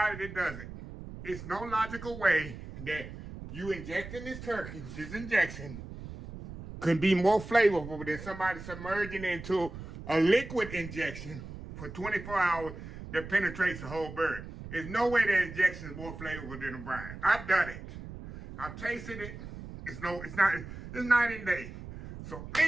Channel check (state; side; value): noise; right; rumble, 12 dB below the sound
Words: that does it. It's no logical way that you injecting this turkey, this injection, could be more flavorful than somebody submerging into a liquid injection for 24 hours that penetrates the whole bird. There's no way that injection is more flavorful than a brine. I've done it. I've tasted it. It's night and day. So